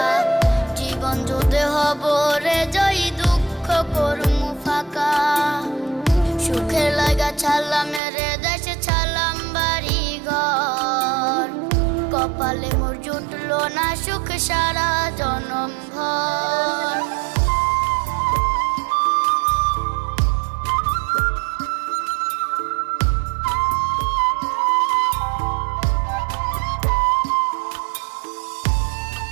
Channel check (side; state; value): left; drops out; at 8.0 s